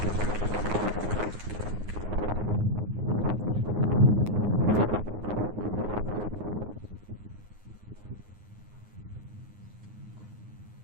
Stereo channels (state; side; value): late; left; 9.6 ms